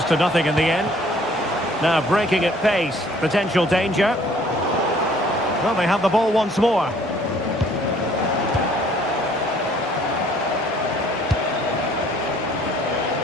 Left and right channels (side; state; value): both; normal; correlation 0.58